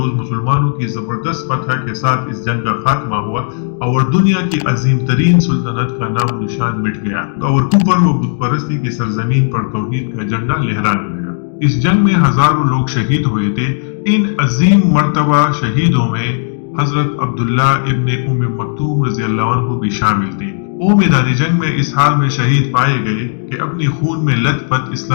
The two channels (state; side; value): silent; right; digital silence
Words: مسلمانوں کی زبردست فتح کے ساتھ اس جنگ کا خاتمہ ہوا اور دنیا کی عظیم ترین سلطنت کا نام و نشان مٹ گیا اور کفر و بت پرستی کی سرزمین پر توحید کا جھنڈا لہرانے لگا۔ اس جنگ میں ہزاروں لوگ شہید ہوئے تھے۔ ان عظیم مرتبہ شہیدوں میں حضرت عبداللہ ابن ام مکتوم رضی اللہ عنہ بھی شامل تھے۔ وہ میدان جنگ میں اس حال میں شہید پائے گئے کہ اپنی خون میں لت پت